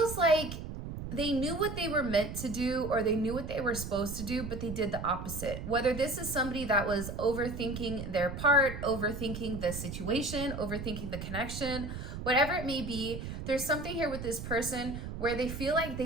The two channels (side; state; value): right; noise; rumble, 7 dB below the sound